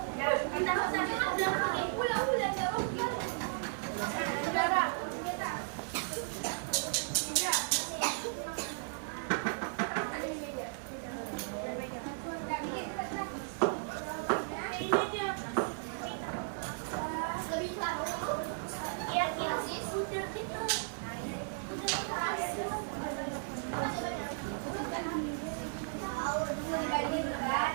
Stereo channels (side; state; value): left; silent; 54 dB below the other